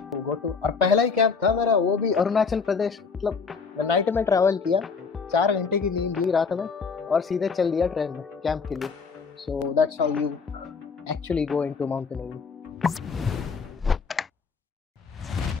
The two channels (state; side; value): quieter; right; 5.2 dB